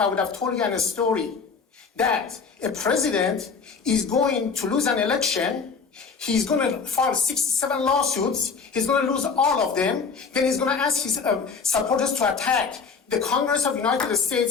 would have told you a story that a president is going to lose an election, he's going to file 67 lawsuits, he's going to lose all of them, then he's going to ask his supporters to attack the Congress of the United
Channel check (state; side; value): quieter; right; 5.3 dB